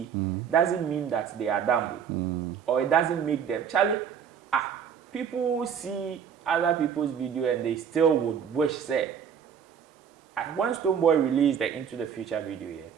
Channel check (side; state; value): left; quieter; 7.6 dB